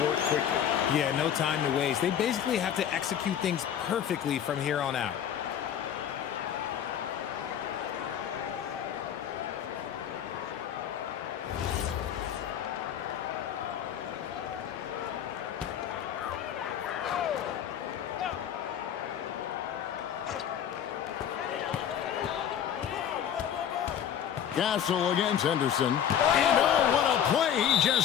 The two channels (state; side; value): quieter; right; 9.4 dB